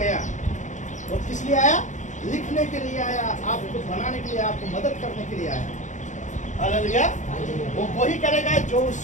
वो किस लिए आया? लिखने के लिए आया, आपको बनाने के लिए, आपको मदद करने के लिए आया। हालेलुया। वो वही करेगा जो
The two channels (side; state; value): right; late; 0.35 ms